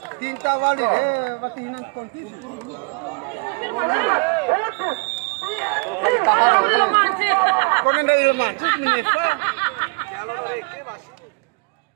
Tinta wali waktu hinan konti. Kau nenda ilman, menyesal.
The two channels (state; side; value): quieter; left; 34.8 dB